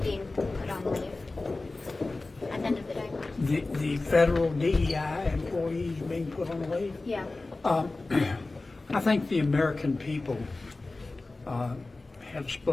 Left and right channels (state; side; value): quieter; right; 3.3 dB